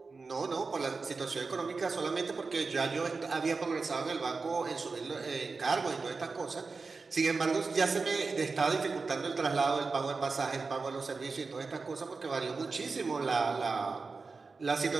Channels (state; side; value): quieter; left; 4.3 dB